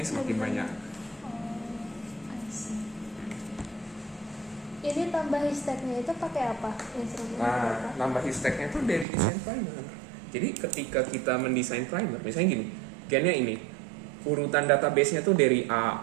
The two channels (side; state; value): left; drops out; at 9.1 s